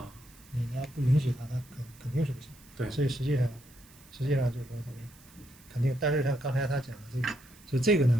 你要不允许它，它肯定是不行。对，所以实际上就是说咱们肯定，但是像刚才他讲的这个，就这个呢，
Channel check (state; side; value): noise; right; hiss, 25 dB below the sound